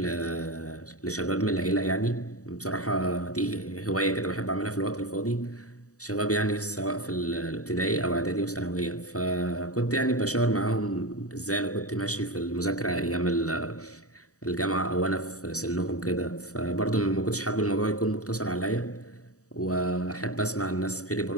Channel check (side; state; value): right; late; 0.66 ms